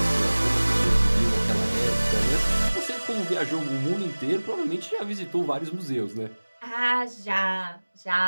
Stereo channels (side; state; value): both; inverted; correlation -1.00